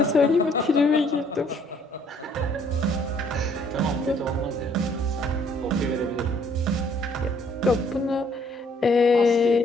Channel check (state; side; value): normal; both; correlation 0.63